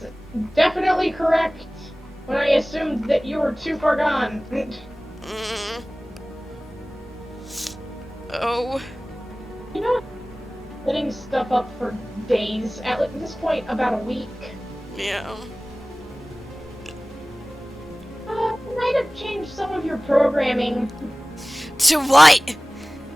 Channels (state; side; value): normal; both; correlation 0.98